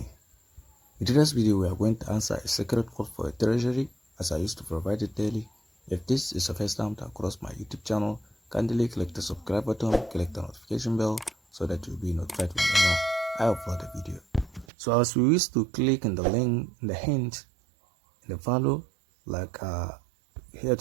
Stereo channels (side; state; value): left; drops out; at 14.7 s